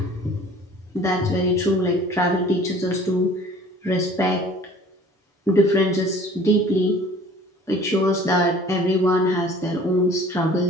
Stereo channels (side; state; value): both; normal; correlation 0.49